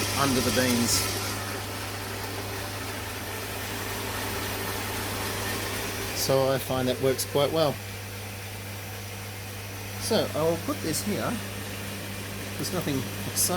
under the beans. So I find that works quite well. So I will put this here because nothing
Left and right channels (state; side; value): identical; both; correlation 1.00